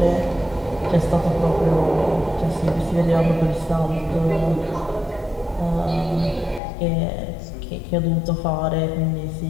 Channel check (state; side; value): drops out; right; at 6.6 s